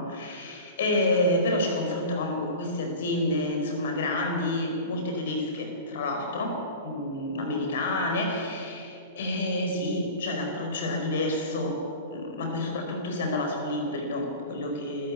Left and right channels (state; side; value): inverted; both; correlation -0.34